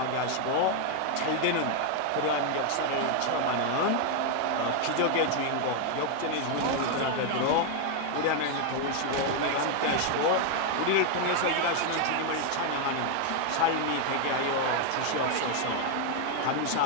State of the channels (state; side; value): different; both; correlation 0.00